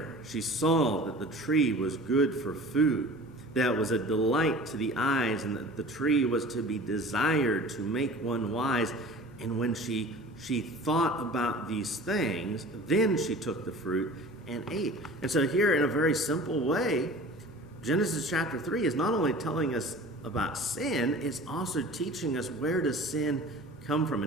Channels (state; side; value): normal; both; correlation 0.41